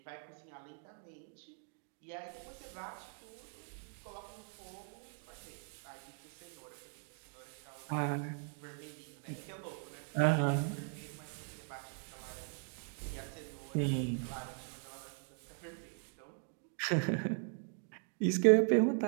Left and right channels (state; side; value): silent; left; 51 dB below the other